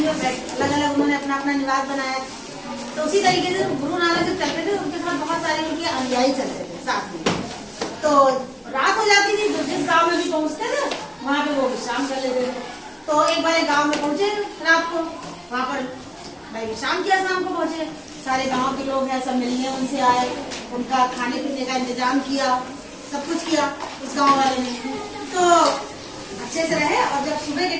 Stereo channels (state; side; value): identical; both; correlation 1.00